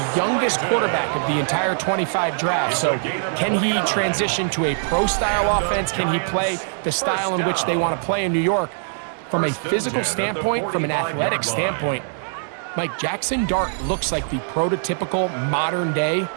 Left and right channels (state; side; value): silent; left; digital silence